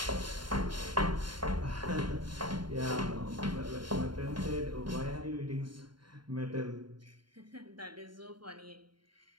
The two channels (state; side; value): late; left; 0.72 ms